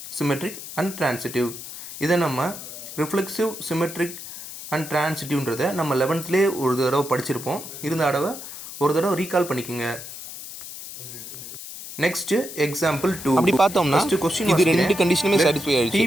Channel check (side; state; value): left; noise; hiss, 11 dB below the sound